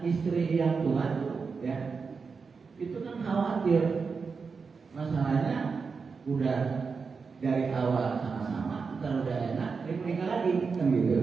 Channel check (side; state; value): left; quieter; 5.1 dB